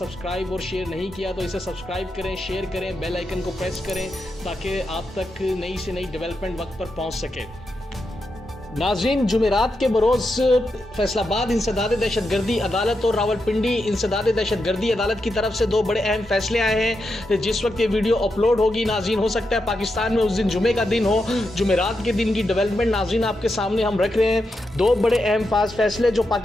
और शेयर नहीं किया तो इसे सब्सक्राइब करें, शेयर करें, बेल आइकन को प्रेस करें ताकि आप तक नई से नई डेवलपमेंट वक्त पर पहुंच सके। नाज़रीन, जुमेरात के बरोज़ फैसलाबाद इंसदाद दहशतगर्दी अदालत और रावलपिंडी इंसदाद दहशतगर्दी अदालत की तरफ से दो बड़े अहम फैसले आए हैं। जिस वक्त ये वीडियो अपलोड होगी नाज़रीन, हो सकता है पाकिस्तान में उस दिन जुमे का दिन हो। जुमेरात के दिन की डेवलपमेंट नाज़रीन आपके सामने हम रख रहे हैं। दो बड़े अहम फैसले जो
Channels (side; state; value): both; normal; correlation 0.86